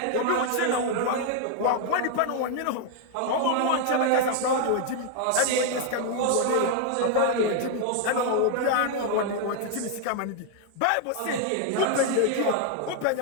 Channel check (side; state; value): both; different; correlation 0.00